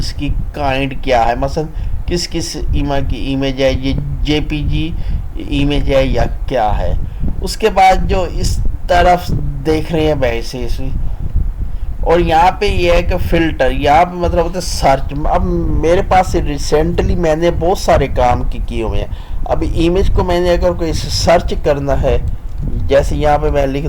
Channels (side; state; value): both; identical; correlation 1.00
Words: کی کائنڈ کیا ہے, مثلا کس ایمیج ہے, یہ جے پی جی ایمیج ہے یا کیا ہے. اس کے بعد جو اس طرف دیکھ رہے ہیں ویسے, اور یہاں پہ یہ ہے کہ فلٹر, یہاں پہ مطلب ہوتا ہے سرچ. اب میرے پاس ریسنٹلی میں نے بہت سارے کام کیے ہوئے ہیں. اب ایمیج کو میں نے اگر کوئی سرچ کرنا ہے, جیسے یہاں پہ میں لکھ